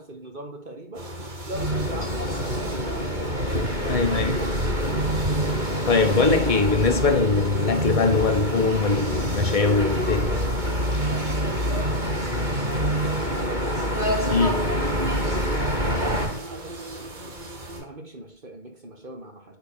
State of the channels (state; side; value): late; left; 2.2 ms